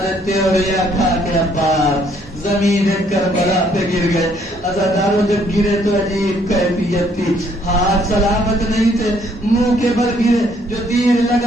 تیوریا کھا کے عباس زمین کربلا پہ گر گئے۔ عزادارو، جب گرے تو عجیب کیفیت تھی، ہاتھ سلامت نہیں تھے، منہ کے بل گرے، جو تیر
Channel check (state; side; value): normal; both; correlation 0.66